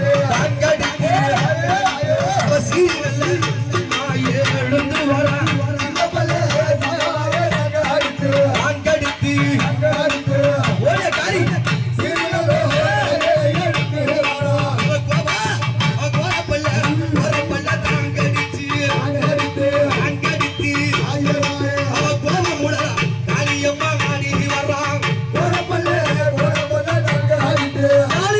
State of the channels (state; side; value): identical; both; correlation 1.00